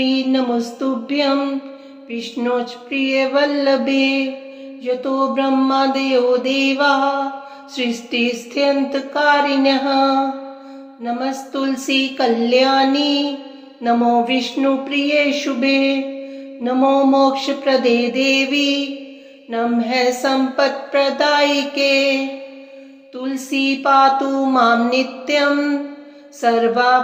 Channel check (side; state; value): both; identical; correlation 1.00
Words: नमस्तुभ्यं विष्णोच प्रिय वल्लभे यतो ब्रह्मादयो देवाः सृष्टिस्थित्यन्तकारिणः नमस्तुलसी कल्याणी नमो विष्णुप्रिये शुभे नमो मोक्षप्रदे देवी नमः सम्पत्प्रदायिके तुलसी पातु मां नित्यं